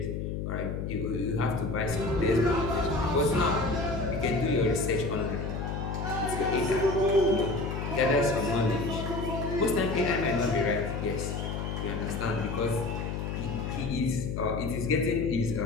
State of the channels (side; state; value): left; noise; hum, 3 dB below the sound